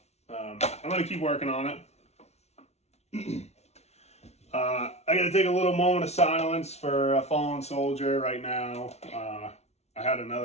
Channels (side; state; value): right; late; 0.31 ms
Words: I'm going to keep working on it. I got to take a little moment of silence for a fallen soldier right now. I had